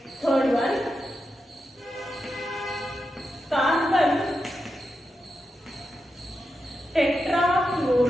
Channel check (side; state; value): both; normal; correlation 0.88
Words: Third one, carbon